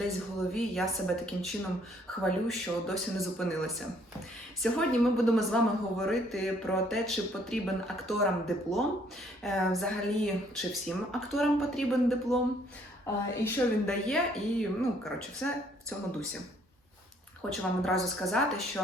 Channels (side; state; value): both; normal; correlation 0.64